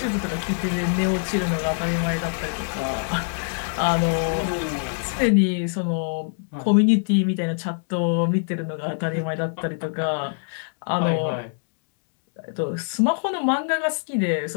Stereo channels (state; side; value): silent; right; digital silence